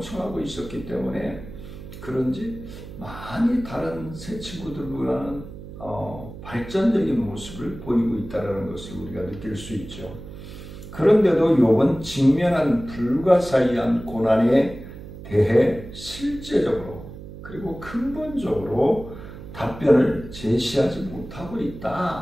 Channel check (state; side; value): noise; right; hum, 13 dB below the sound